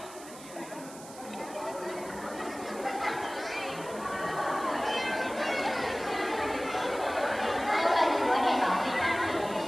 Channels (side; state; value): right; noise; hiss, 17 dB below the sound